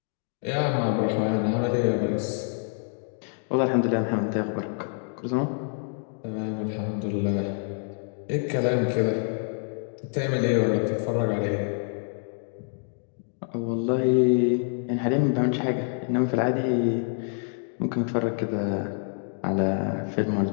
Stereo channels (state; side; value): silent; right; 58 dB below the other